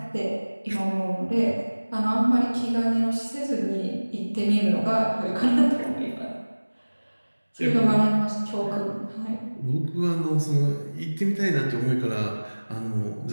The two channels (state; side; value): inverted; both; correlation -1.00